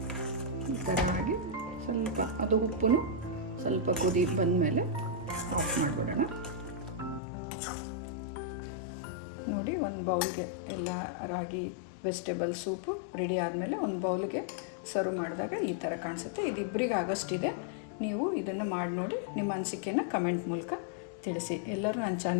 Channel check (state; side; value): drops out; right; at 7.2 s